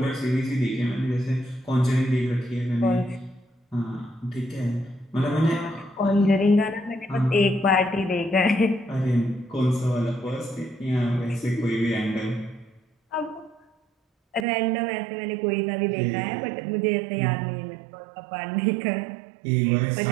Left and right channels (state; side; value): drops out; left; at 14.5 s